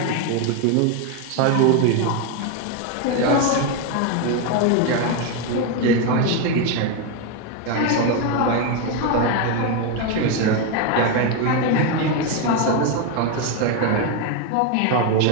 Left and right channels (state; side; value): different; both; correlation 0.02